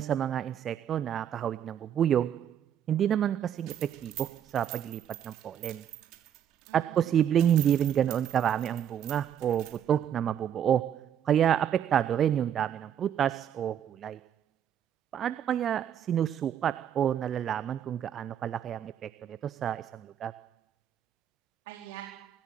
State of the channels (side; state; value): left; quieter; 9.6 dB